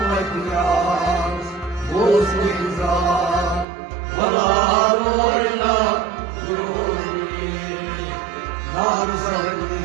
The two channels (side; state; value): left; drops out; at 3.7 s